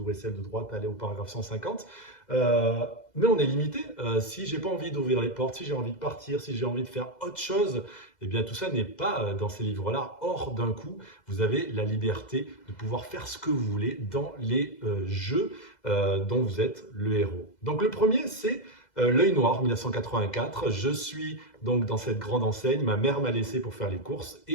celle de droite, elle est au paragraphe 150. Mais on est limité. Si j'ai pas envie d'ouvrir les portes, si j'ai envie de partir, si j'ai envie de faire autre chose, eh bien tout ça n'est pas dans ces livres-là. Or, d'un coup, vous avez la liberté de pouvoir faire ce que vous voulez dans les jeux dont vous êtes le héros. Donc le premier, c'est L'œil noir, 1984. Je suis donc dans cette grande enseigne. Ma mère m'a laissé pour faire les courses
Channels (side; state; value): right; late; 2.0 ms